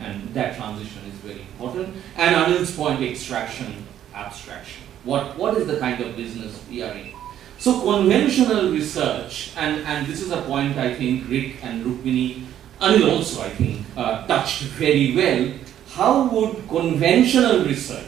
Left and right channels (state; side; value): quieter; left; 11.0 dB